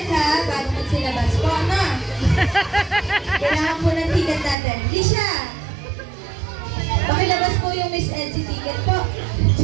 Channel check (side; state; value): left; drops out; at 4.5 s